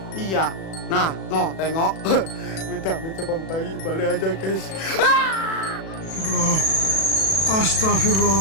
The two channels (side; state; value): right; late; 37 ms